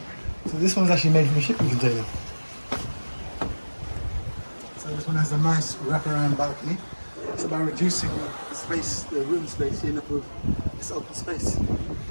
so this one's actually made from a shipping container. So this one has a nice wraparound balcony. It's about reducing the space, the room space, you end up with this open space.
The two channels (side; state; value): both; inverted; correlation -1.00